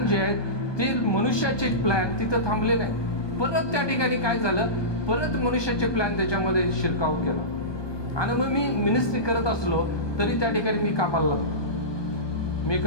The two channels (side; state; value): right; late; 1.2 ms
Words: जे आहेत ते मनुष्याचे प्लॅन तिथं थांबले नाही. परत त्या ठिकाणी काय झालं, परत मनुष्याचे प्लॅन त्याच्यामध्ये शिरकाव केला. आणि मग मी मिनिस्ट्री करत असलो तरी त्या ठिकाणी मी कामाला लागलो. मी